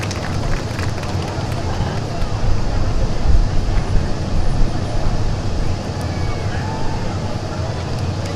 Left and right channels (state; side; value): identical; both; correlation 1.00